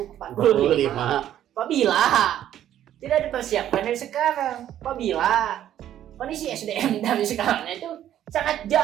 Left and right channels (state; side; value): quieter; left; 11.4 dB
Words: apabila tidak dipersiapkan dari sekarang, apabila kondisi SDM dari sekarang itu sangat